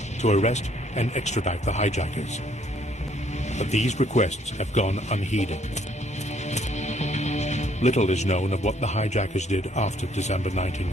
to arrest and extradite the hijackers. But these requests have gone unheeded. Little is known of what the hijackers did after December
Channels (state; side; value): normal; both; correlation 0.65